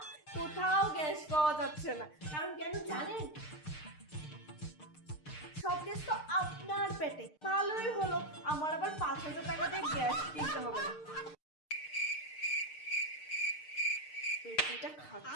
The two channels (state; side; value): late; right; 6.6 ms